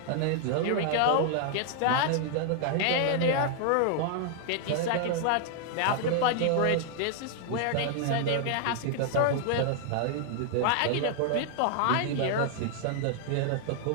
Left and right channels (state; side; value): different; both; correlation 0.00